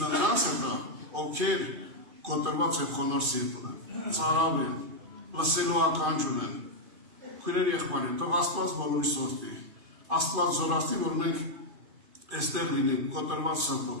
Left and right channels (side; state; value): left; late; 2.5 ms